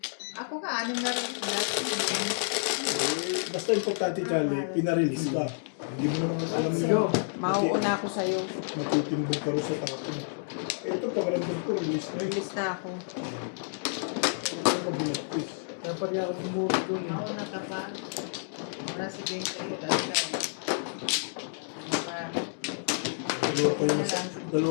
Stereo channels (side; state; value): right; silent; 58 dB below the other